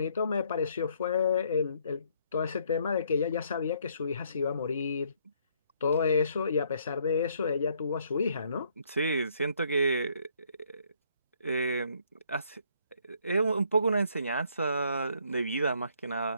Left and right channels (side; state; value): both; inverted; correlation -0.67